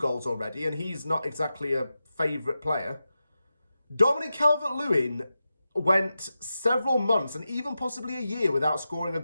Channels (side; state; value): both; inverted; correlation -0.91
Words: already, and he's not exactly a favourite player. Dominic Calvert-Lewin went several months and even possibly a year without scoring a